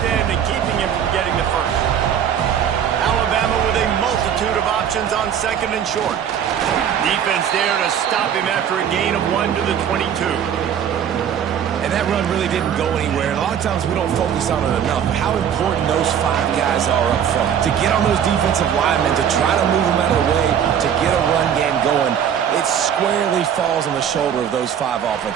end and keeping him from getting the first? Alabama with a multitude of options on second and short. Defense there to stop him after a gain of 1 to the 22. And that run really didn't go anywhere. And a lot of times we don't focus on it enough. How important those 5 guys are up front. To get on those defensive linemen, to try to move them out of the way, to get a run game going, it squarely falls on the shoulder of those 5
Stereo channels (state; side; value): quieter; left; 8.7 dB